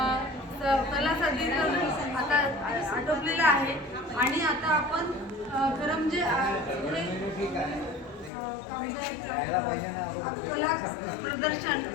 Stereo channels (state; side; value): drops out; right; at 8.3 s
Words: कला सादरीकरण आता आटोपलेलं आहे. आणि आता आपण खरं म्हणजे कला प्रदर्शन